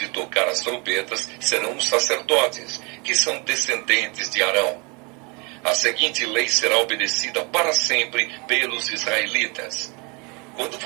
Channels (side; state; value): left; quieter; 30.7 dB